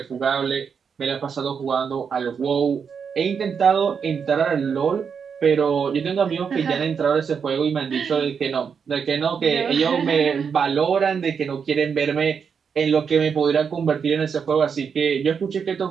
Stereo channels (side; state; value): left; quieter; 6.5 dB